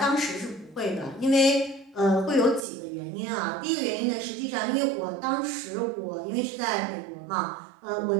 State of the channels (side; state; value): left; drops out; at 2.6 s